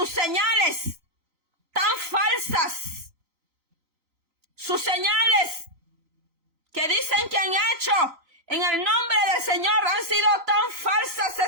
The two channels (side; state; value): left; late; 3.9 ms